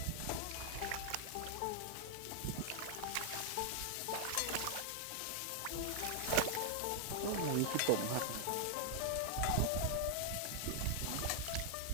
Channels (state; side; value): different; both; correlation 0.00